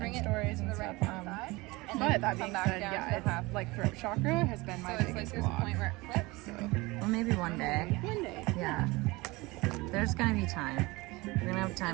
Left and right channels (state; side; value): quieter; left; 22.7 dB